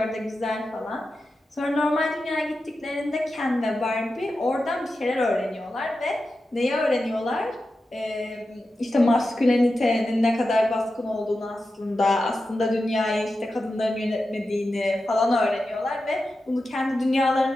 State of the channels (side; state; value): both; normal; correlation 0.91